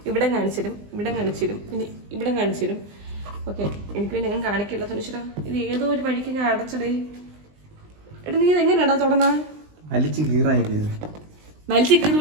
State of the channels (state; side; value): late; left; 20 ms